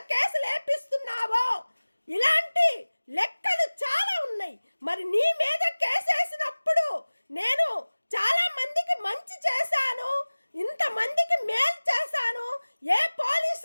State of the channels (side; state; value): both; inverted; correlation -1.00